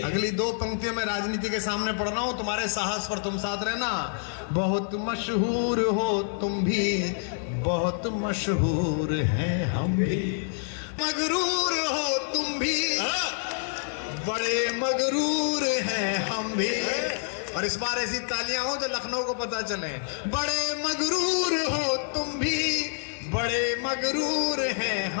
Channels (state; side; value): silent; right; digital silence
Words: अगली 2 पंक्तियों में राजनीति के सामने पढ़ रहा हूं, तुम्हारे साहस पर तुम साथ रहना। बहुत मशहूर हो तुम भी, बहुत मशहूर हैं हम भी। मगरूर हो तुम भी, बड़े मगरूर हैं हम भी। और इस बार ऐसी तालियां हो जो लखनऊ को पता चले। बड़े मगरूर हो तुम भी, बड़े मगरूर हैं